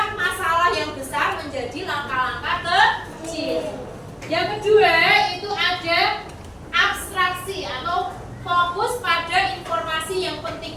masalah yang besar menjadi langkah-langkah kecil. Yang kedua itu ada abstraksi atau fokus pada informasi yang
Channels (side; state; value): both; identical; correlation 1.00